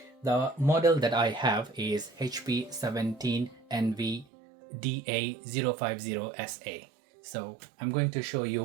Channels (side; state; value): left; drops out; at 4.2 s